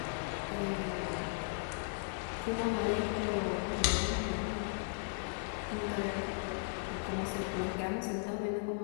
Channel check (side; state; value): right; silent; 53 dB below the other